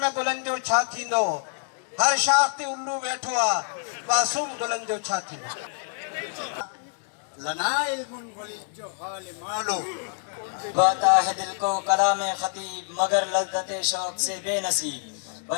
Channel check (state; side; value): silent; right; digital silence